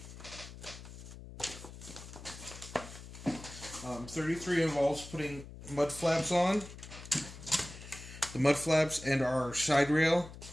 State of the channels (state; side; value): noise; left; hum, 14 dB below the sound